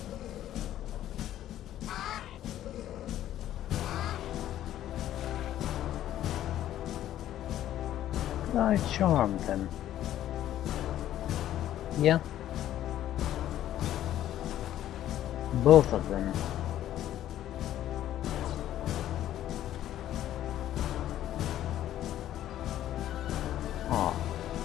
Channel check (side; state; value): right; quieter; 12.4 dB